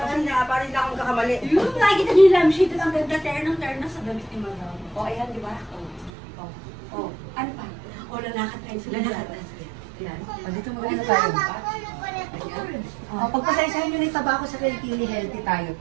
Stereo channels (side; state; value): left; drops out; at 6.1 s